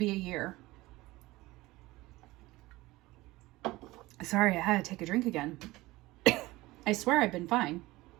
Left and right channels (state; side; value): quieter; left; 19.4 dB